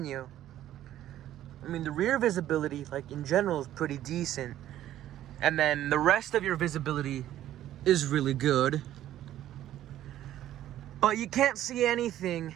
you? I mean, the rear visibility, like in general, is pretty decent, and then the rest of your visibility is really good. But you can't see anything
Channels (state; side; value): quieter; left; 12.6 dB